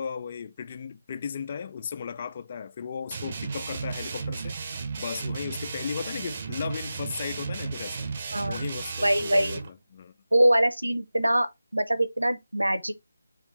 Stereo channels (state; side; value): inverted; both; correlation -0.93